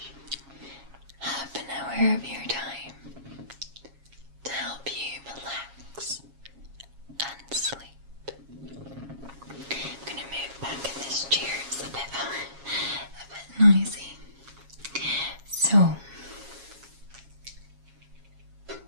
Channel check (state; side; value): late; left; 7.3 ms